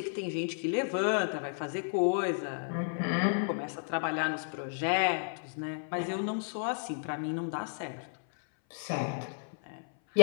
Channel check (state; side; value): silent; right; 55 dB below the other